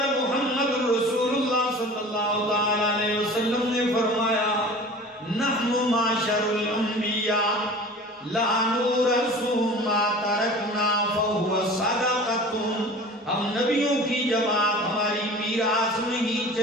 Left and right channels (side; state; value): both; normal; correlation 0.40